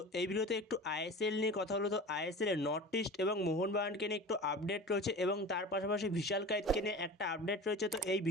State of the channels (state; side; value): normal; both; correlation 0.35